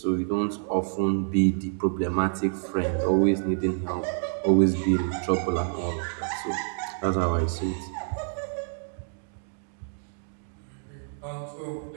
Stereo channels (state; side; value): silent; left; digital silence